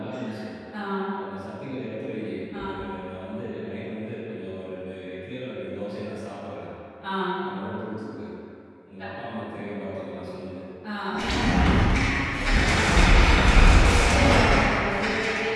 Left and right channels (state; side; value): identical; both; correlation 1.00